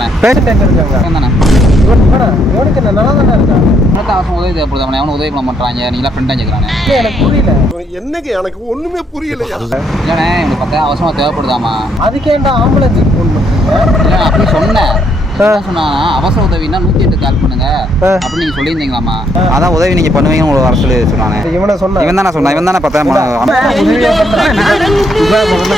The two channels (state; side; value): normal; both; correlation 0.72